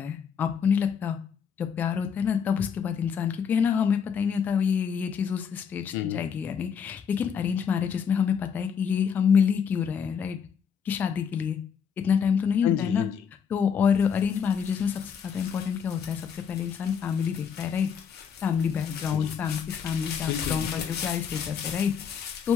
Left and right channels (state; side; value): quieter; right; 7.1 dB